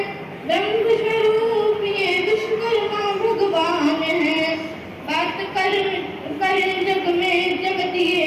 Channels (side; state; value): both; identical; correlation 1.00